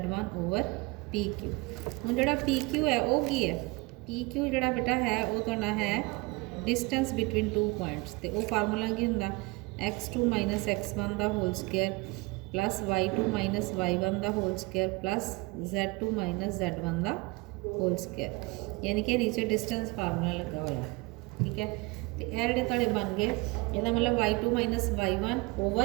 over PQ। हुण जोड़ा PQ है वो की है, PQ जोड़ा बेटा है वो तुहाडा है डिस्टेंस बिटवीन टू पॉइंट्स। तो वो फार्मूला की हुंदा x2 माइनस x1 का whole square plus y2 minus y1 का whole square plus z2 minus z1 का होल स्केयर, यानी कि नीचे डिस्टेंस फार्मूला लगा हुआ। ठीक है, तो यह जोड़े तुहाडे बन गए, इसका मतलब y2 minus y1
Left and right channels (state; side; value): quieter; left; 25.1 dB